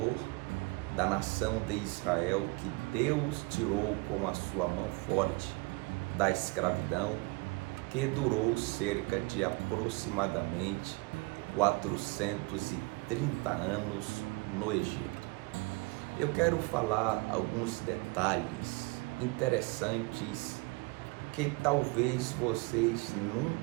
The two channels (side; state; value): left; quieter; 26.5 dB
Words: da nação de Israel, que Deus tirou com a sua mão forte da escravidão, que durou cerca de aproximadamente 430 anos no Egito. Eu quero falar alguns detalhes interessantes que talvez vocês